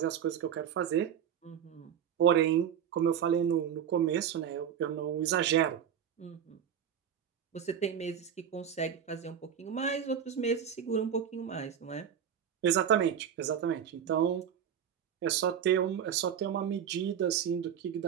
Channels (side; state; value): left; quieter; 8.6 dB